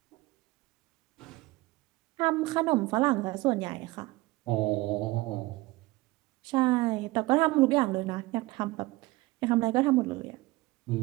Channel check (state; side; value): quieter; left; 20.5 dB